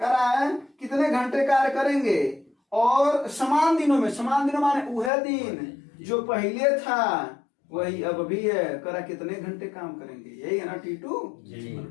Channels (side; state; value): right; drops out; at 5.1 s